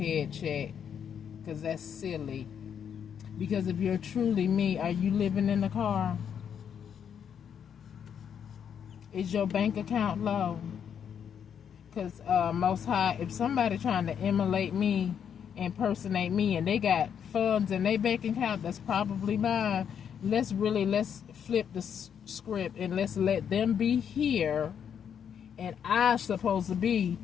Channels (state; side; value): quieter; right; 8.1 dB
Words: checked, because that's silly. Because if you're truly me, are you living in the car? Is your bank account low? Because Most High, if somebody trying to emulate me, impersonate me, and they got funds in their bank account that's probably mine, let's flip the script and let's let them be here, and I'm supposed to be